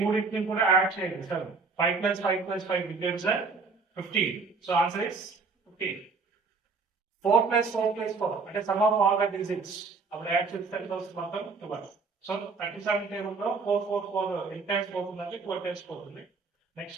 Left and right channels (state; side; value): quieter; left; 4.4 dB